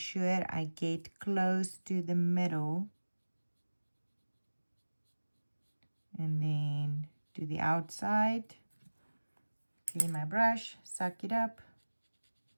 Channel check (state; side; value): inverted; both; correlation -1.00